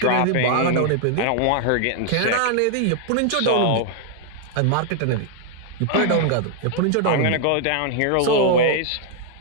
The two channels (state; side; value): different; both; correlation 0.00